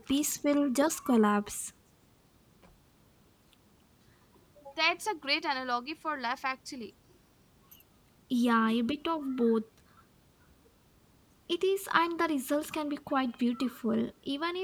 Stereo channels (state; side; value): identical; both; correlation 1.00